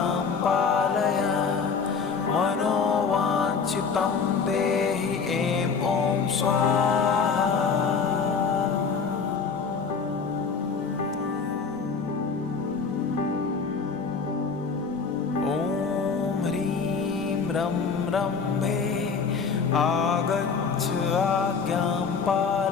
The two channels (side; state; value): right; quieter; 5.5 dB